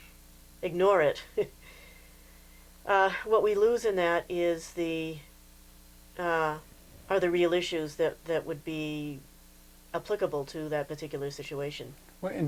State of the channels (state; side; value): identical; both; correlation 1.00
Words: ignore it, what we lose in that is uh, are the real issues that would be applicable to that particular situation. well,